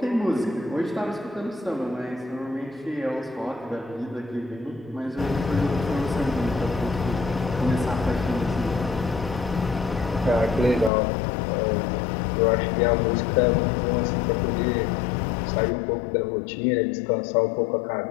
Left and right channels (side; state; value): right; drops out; at 10.9 s